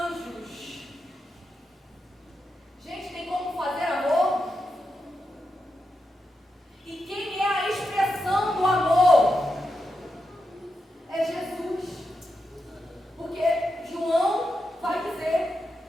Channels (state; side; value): normal; both; correlation 0.87